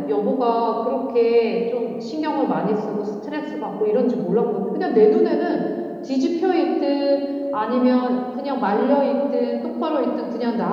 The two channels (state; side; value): identical; both; correlation 1.00